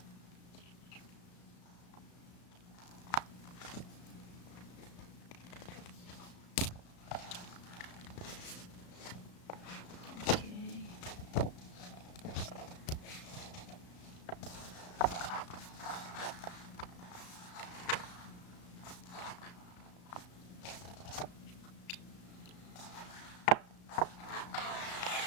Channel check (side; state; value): right; late; 35 ms